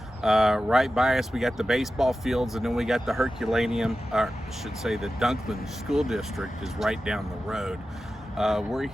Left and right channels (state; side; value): normal; both; correlation 0.93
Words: Right by us, we got the baseball fields, and then we got the Herculaneum, or I should say the Dunklin School District is right down the road. We're